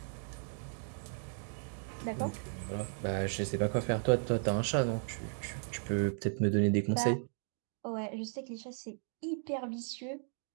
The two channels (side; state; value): left; silent; 54 dB below the other